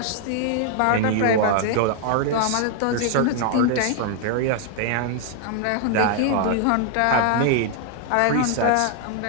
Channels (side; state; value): both; different; correlation 0.00